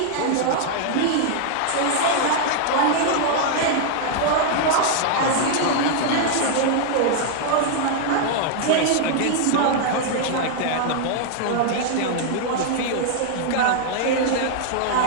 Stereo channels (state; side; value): different; both; correlation -0.01